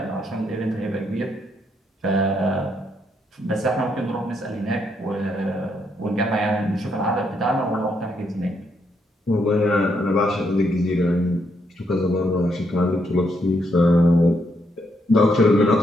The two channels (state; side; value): normal; both; correlation 0.76